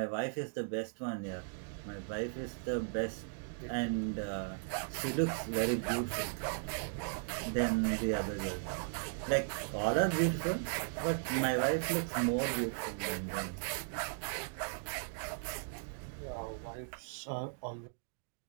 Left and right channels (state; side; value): silent; left; digital silence